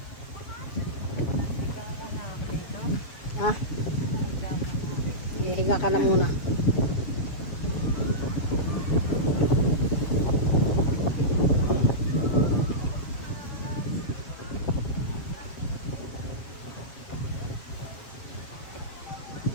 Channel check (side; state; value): right; late; 7.4 ms